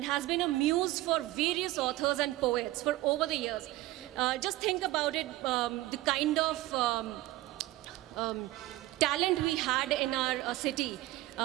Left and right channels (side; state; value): left; quieter; 17.5 dB